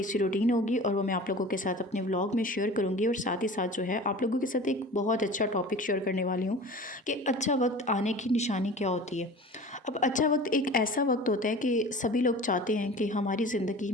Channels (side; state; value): both; normal; correlation 0.39